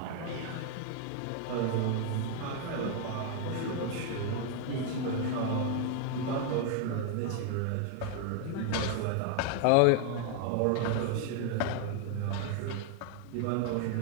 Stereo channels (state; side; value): different; both; correlation 0.00